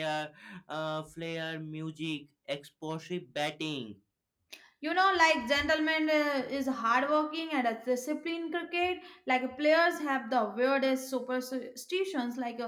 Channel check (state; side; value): identical; both; correlation 1.00